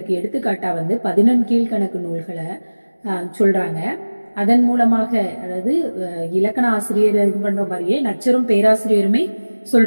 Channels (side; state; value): both; inverted; correlation -1.00